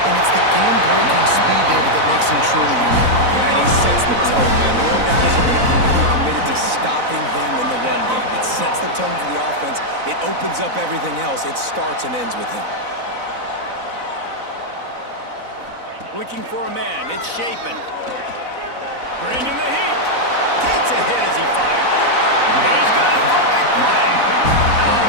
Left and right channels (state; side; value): late; left; 4.0 ms